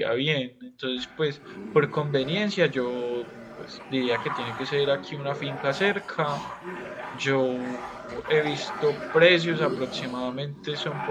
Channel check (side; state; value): both; identical; correlation 1.00